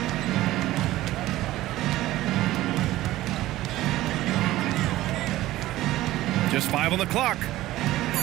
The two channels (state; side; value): quieter; left; 16.0 dB